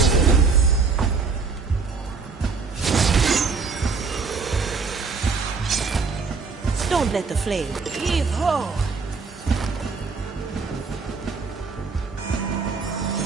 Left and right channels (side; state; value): left; quieter; 4.7 dB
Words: Don't let the flame. Heave-ho!